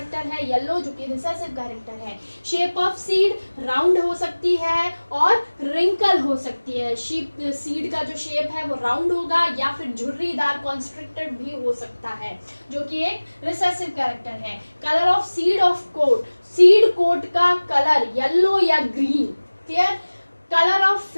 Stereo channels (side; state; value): both; inverted; correlation -1.00